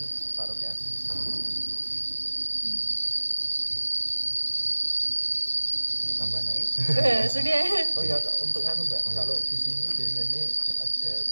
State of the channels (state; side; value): inverted; both; correlation -1.00